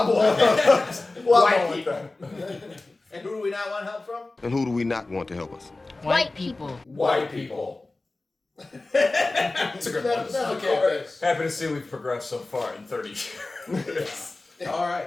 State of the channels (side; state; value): right; quieter; 3.2 dB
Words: White people. And who do we not want help from? And who do we not want to help us? White people. White people. That's a good one. That's okay. Happy to see we've progressed so far in 30 years. All